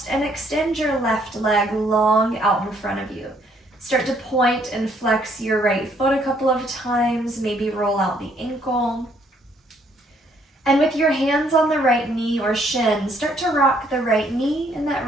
and extend your left leg long out in front of you. Start to point and flex your right foot a couple of times, maybe roll out the ankle. And with your hands on the right knee or shin, start to rock the right knee and that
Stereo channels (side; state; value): both; normal; correlation 0.67